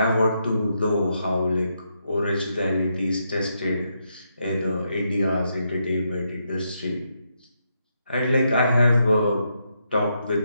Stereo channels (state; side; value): inverted; both; correlation -0.80